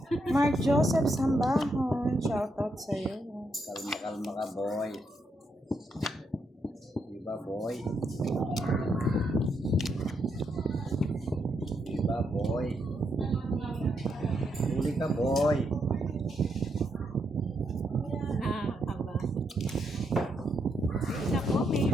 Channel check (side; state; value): both; normal; correlation 0.79